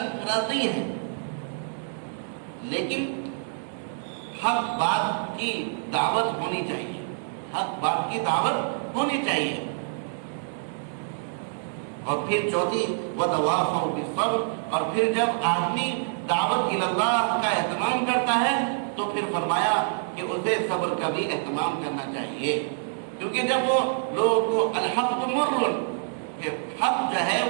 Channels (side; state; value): left; silent; digital silence